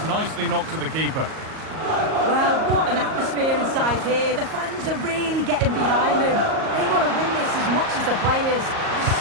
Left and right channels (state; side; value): late; left; 38 ms